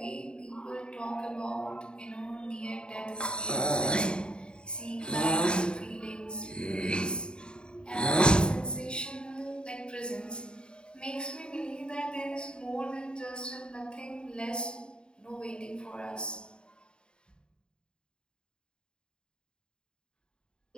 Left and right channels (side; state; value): right; late; 0.050 ms